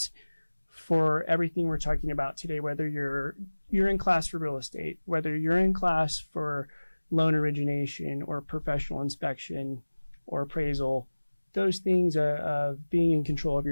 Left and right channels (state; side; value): inverted; both; correlation -1.00